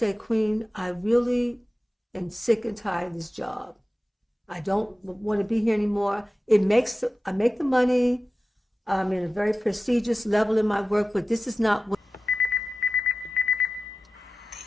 Queen, I really am sick and tired of this job. I don't want to be here anymore. I make the money. I'm in a very prestigious level in my work, but this is not what The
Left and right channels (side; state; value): both; normal; correlation 0.95